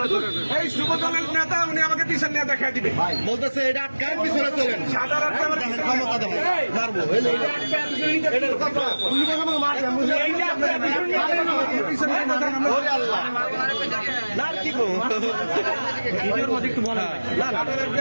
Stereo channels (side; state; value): both; inverted; correlation -1.00